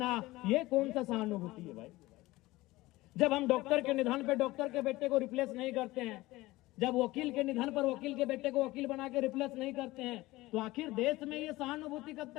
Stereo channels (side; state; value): right; quieter; 19.1 dB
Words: ये कौन सा सहानुभूति है भाई? जब हम डॉक्टर के निधन पे डॉक्टर के बेटे को रिप्लेस नहीं करते हैं, जब वकील के निधन पर वकील के बेटे को वकील बना के रिप्लेस नहीं करते हैं, तो आखिर देश में ये सहानुभूति कब